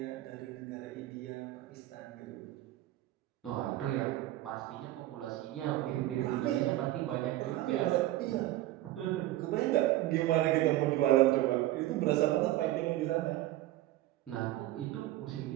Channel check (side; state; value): left; quieter; 15.7 dB